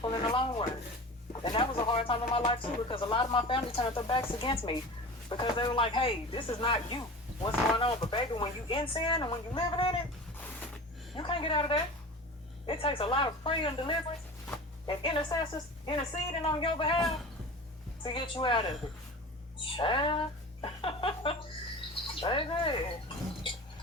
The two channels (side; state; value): both; normal; correlation 0.35